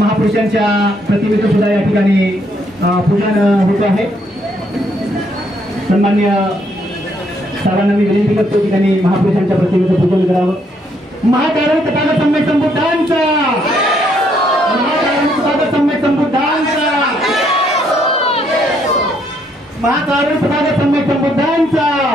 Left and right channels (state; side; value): normal; both; correlation 0.71